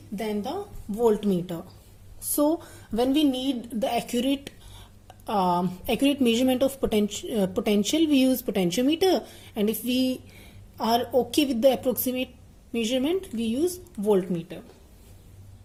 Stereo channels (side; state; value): both; identical; correlation 1.00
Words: than the voltmeter. So when we need the accurate measurement of potential, we use potentiometer, and if we are okay with the approximate measurement, we use voltmeter.